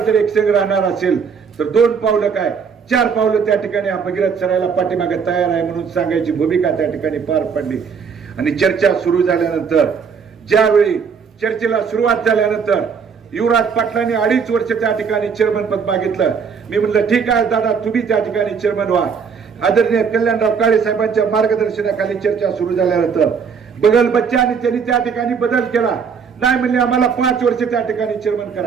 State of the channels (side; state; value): left; quieter; 6.2 dB